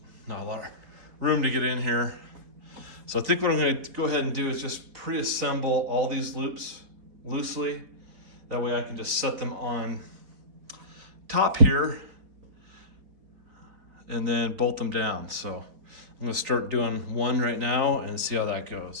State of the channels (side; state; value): left; late; 4.1 ms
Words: not a lot of room to get in here. So I think what I'm gonna go ahead and do is just pre-assemble all these loops loosely. That way I can just set them on top here and then bolt them down. So I'm gonna start doing one right now and see how that